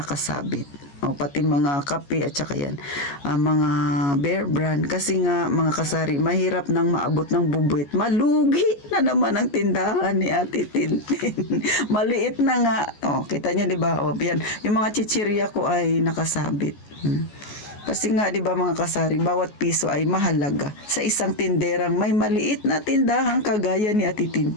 nakasabit. O, pati mga kape at saka yan, mga Bear Brand. Kasi nga, mga kasari, mahirap nang maabot ng bubuit. Malugi na naman ang tindahan ni Ate Tintin. Maliit na nga. O, kita nyo, di ba? O, yan. Yung mga chichirya ko ay nakasabit. Kasi nga, di ba mga kasari, bawat piso ay mahalaga sa isang tinderang may maliit na tindahang kagaya ni Ate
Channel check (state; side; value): late; right; 14 ms